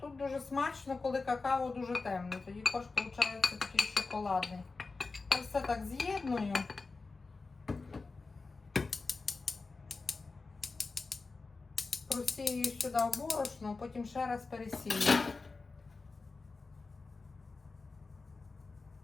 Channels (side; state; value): right; quieter; 4.0 dB